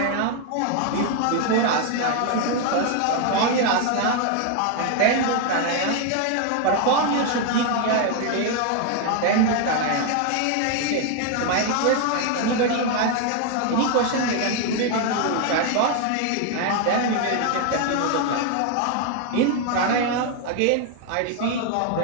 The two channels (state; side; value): different; both; correlation 0.01